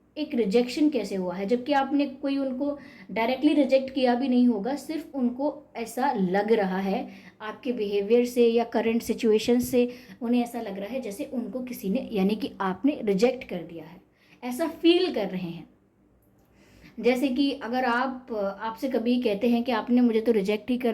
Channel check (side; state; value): both; identical; correlation 1.00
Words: एक रिजेक्शन कैसे हुआ है, जबकि आपने कोई उनको डायरेक्टली रिजेक्ट किया भी नहीं होगा, सिर्फ उनको ऐसा लग रहा है आपके बिहेवियर से या करंट सिचुएशन से, उन्हें ऐसा लग रहा है जैसे उनको किसी ने, यानी कि आपने रिजेक्ट कर दिया है, ऐसा फील कर रहे हैं। जैसे कि अगर आपसे कभी कहते हैं कि आपने मुझे तो रिजेक्ट ही